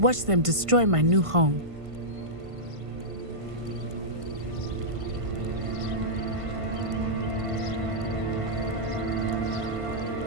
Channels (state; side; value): late; left; 1.5 ms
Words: watch them destroy my new home.